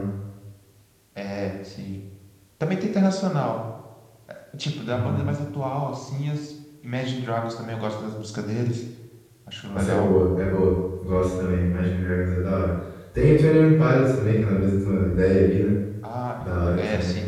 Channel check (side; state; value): both; identical; correlation 1.00